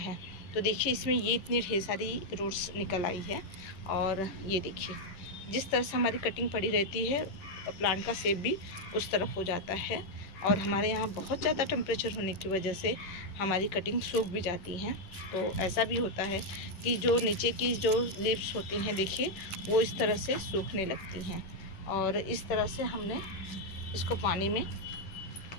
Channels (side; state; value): right; late; 11 ms